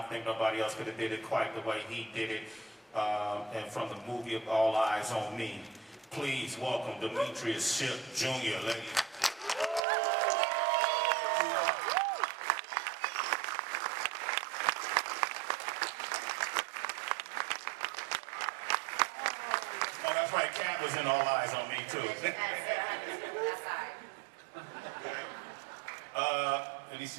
think nobody else could have did it quite the way he did it. And from the movie of All Eyes on Me, please welcome Demetrius Shipp Jr., ladies. Oh, that's right, Cat was in All Eyes on Me, too. Let me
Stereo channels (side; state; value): left; drops out; at 9.8 s